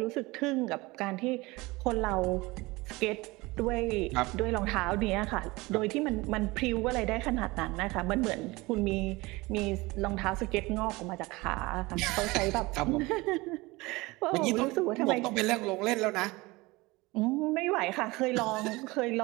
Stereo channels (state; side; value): quieter; left; 22.3 dB